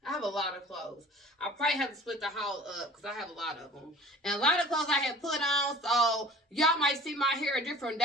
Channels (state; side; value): normal; both; correlation 0.44